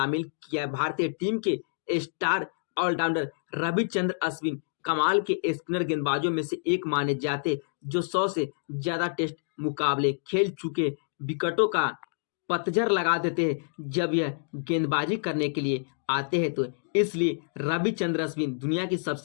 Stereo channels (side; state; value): right; silent; digital silence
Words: किया। भारतीय टीम के स्टार ऑलराउंडर रविचंद्र अश्विन कमाल के स्पिनर गेंदबाजों में से एक माने जाते, जो 100 से ज्यादा टेस्ट मुकाबले खेल चुके विकेटों का पतझड़ लगा देते हैं जब यह गेंदबाजी करने के लिए आते हैं। तो इसलिए रविचंद्र अश्विन दुनिया की